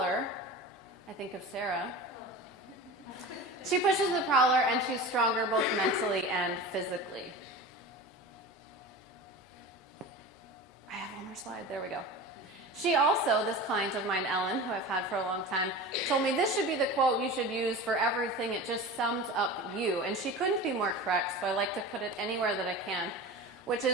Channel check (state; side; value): normal; both; correlation 0.32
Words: I think of Sarah. She pushes the prowler and she's stronger both mentally and physically. I have one more slide. There we go. She also, this client of mine, Ellen, who I've had for a long time, told me this should be the quote you should use for everything. It just sums up you. And she couldn't be more correct, so I like to put it anywhere that I can, which